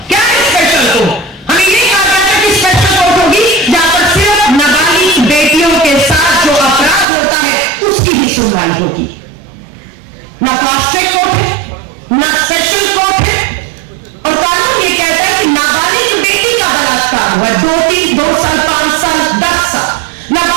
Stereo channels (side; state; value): left; drops out; at 7.1 s